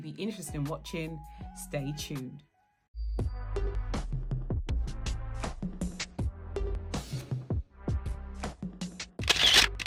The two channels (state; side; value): identical; both; correlation 1.00